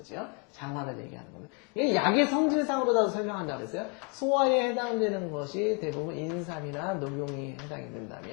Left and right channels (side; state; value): right; quieter; 34.5 dB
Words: 장화를 얘기하는 거죠. 이게 약의 성질상으로도 설명한다고 했어요. 소화에 해당되는 것이 대부분 인삼이나 녹용이 해당이